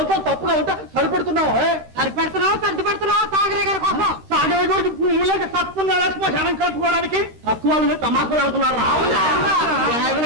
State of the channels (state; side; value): late; left; 13 ms